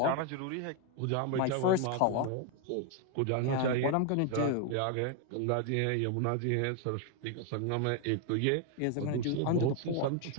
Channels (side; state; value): both; different; correlation 0.01